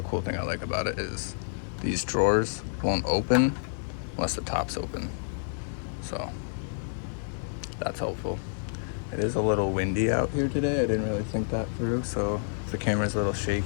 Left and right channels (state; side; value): silent; right; digital silence